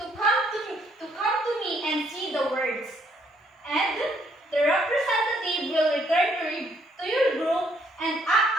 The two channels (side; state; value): both; normal; correlation 0.69